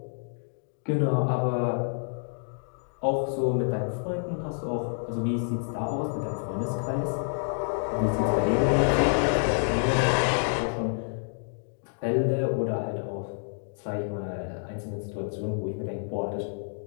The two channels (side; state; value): right; silent; digital silence